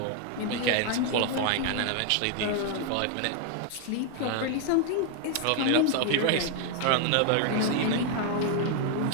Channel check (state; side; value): different; both; correlation 0.00